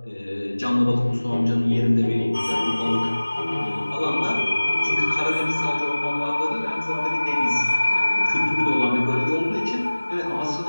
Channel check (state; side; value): inverted; both; correlation -1.00